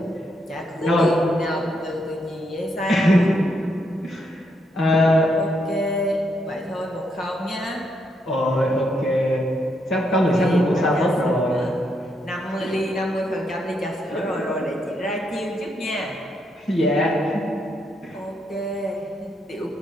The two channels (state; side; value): normal; both; correlation 0.78